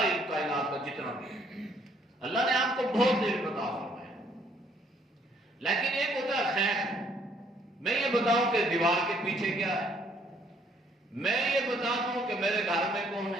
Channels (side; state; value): both; normal; correlation 0.65